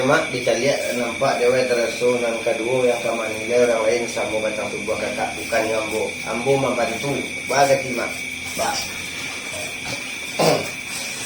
dicari nampak dewa terasa nang kedua yang kaman nilai orang lain sama batang tubuh kakak bukan Ambo. Ambo membantu. Baga timak. Bah.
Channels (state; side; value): identical; both; correlation 1.00